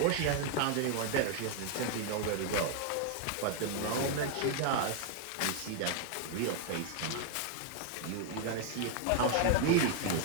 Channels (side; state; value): both; different; correlation 0.00